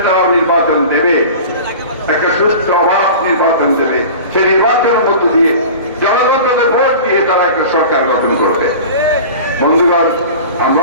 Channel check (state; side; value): inverted; both; correlation -0.36